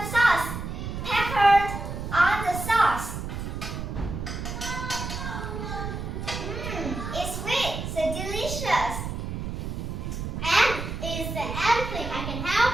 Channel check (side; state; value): right; noise; rumble, 5 dB below the sound